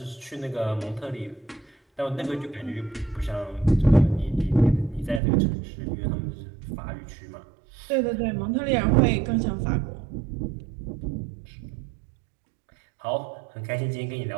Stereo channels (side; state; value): left; drops out; at 5.2 s